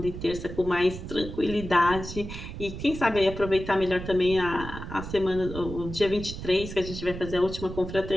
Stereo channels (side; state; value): right; noise; rumble, 9 dB below the sound